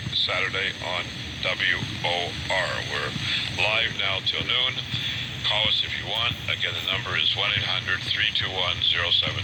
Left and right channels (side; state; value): both; identical; correlation 1.00